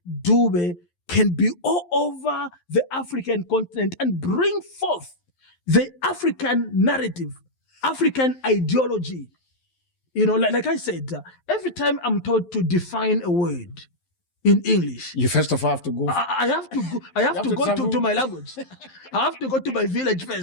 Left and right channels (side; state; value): right; late; 11 ms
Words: Dube can be all over the African continent and bring forth the African narrative, African ideology. Like I said, every time I'm told to define a word in English, you first of all have to go. I have to go. I have to go to my language. I have to go to my village